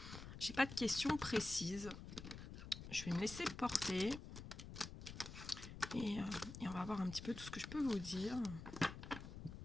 j'ai pas de questions précises. Je vais me laisser porter, et on va voir un petit peu tout ce que je peux vous dire.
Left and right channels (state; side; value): noise; left; rumble, 10 dB below the sound